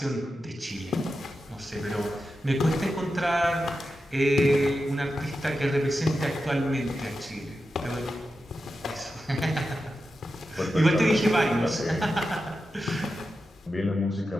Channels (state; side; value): normal; both; correlation 0.90